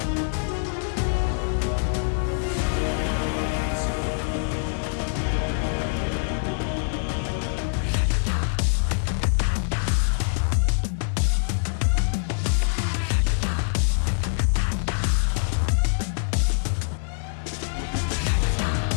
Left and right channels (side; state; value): right; silent; 62 dB below the other